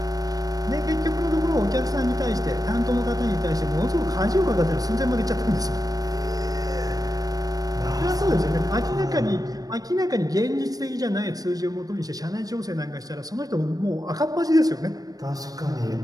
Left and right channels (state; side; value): late; left; 0.18 ms